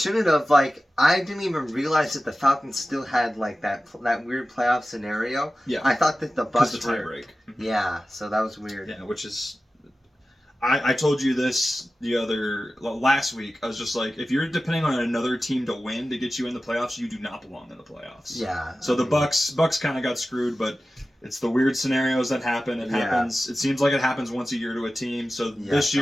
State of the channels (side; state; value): both; normal; correlation 0.95